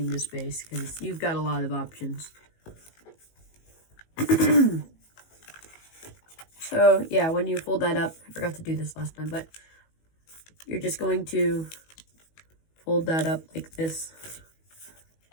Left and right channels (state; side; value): late; right; 19 ms